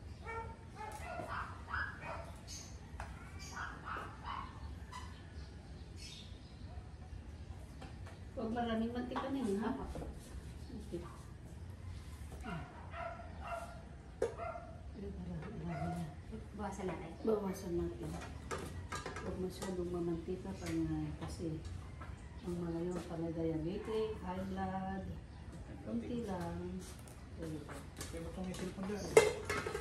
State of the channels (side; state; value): both; identical; correlation 1.00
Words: Huwag maraming mantika na yun, ha? Okay. Bawasan natin. Bawasan natin. Huwag masyadong mamantika kasi ang mga yun pala diabetic, high blood, konti lang. Kaya ba't may cellphone dyan?